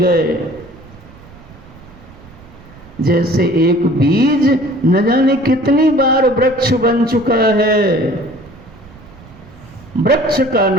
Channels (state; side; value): noise; right; rumble, 22 dB below the sound